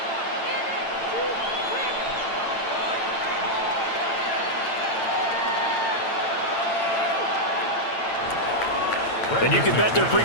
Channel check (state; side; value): late; right; 8.9 ms